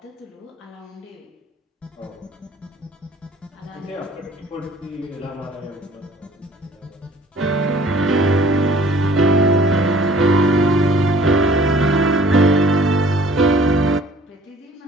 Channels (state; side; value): normal; both; correlation 0.53